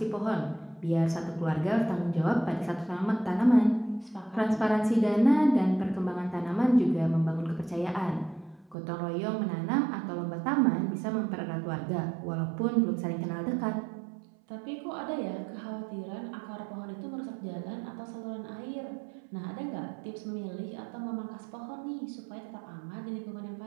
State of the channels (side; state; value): left; drops out; at 8.8 s